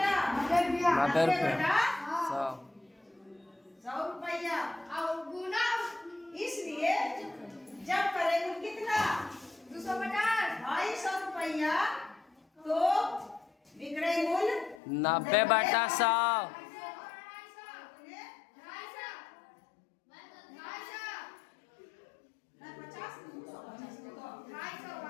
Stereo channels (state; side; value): drops out; right; at 14.8 s